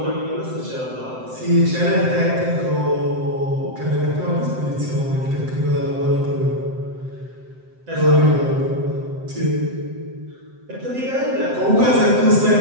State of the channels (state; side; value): late; left; 7.8 ms